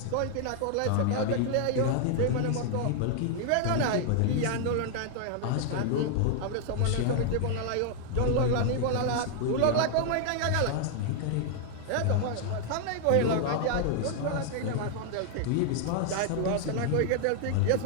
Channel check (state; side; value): different; both; correlation 0.00